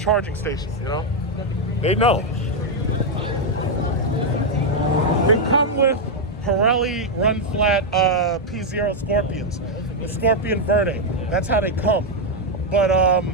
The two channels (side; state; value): both; normal; correlation 0.00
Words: station, you know? They know. They come with Pirelli run flat P0 Scorpions, the Scorpion Verde. That's how they come. But